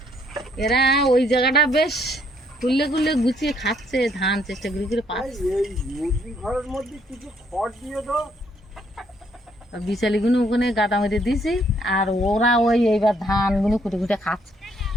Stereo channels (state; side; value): normal; both; correlation 0.68